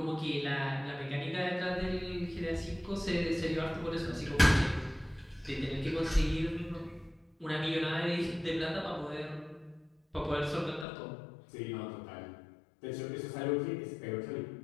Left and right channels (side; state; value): right; drops out; at 10.9 s